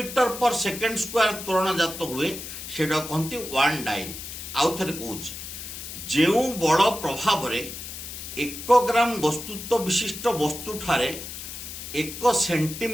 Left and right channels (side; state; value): left; noise; hiss, 9 dB below the sound